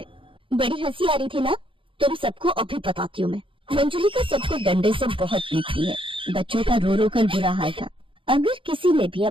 बड़ी हंसी आ रही थी ना? तुम सबको अभी बताती हूँ मैं। मंजुलिका सबको डंडे से बहुत पीटती है। बच्चों का रो रो कर बुरा हाल था। अगर किसी ने भी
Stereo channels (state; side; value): late; left; 0.25 ms